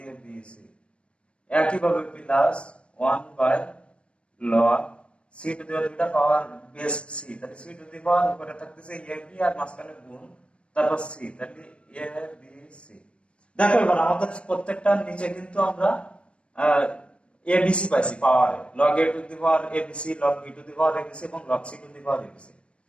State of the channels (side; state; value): right; late; 0.059 ms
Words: b c। একইভাবে plus 1 by log c to the power দুইটা পাওয়ার বেস c, তাহলে c টু দি পাওয়ার উপরে থাকতেছে a b আর মাঝখানে গুণ, তারপর c, তাহলে a b c। দেখো এবার আমাদের প্রত্যেকটা নিচে কিন্তু আমরা abc পাইছি পাওয়ারে, log a to the power abc, log b to the power abc এবং log c to the power abc।